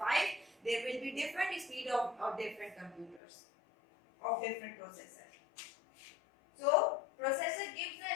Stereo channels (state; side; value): drops out; right; at 3.2 s